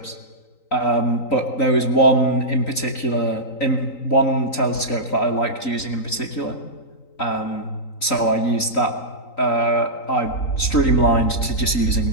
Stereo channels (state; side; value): late; right; 3.9 ms